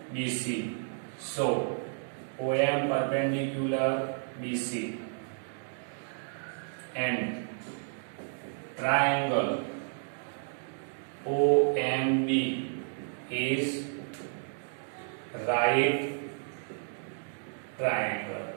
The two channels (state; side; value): silent; left; digital silence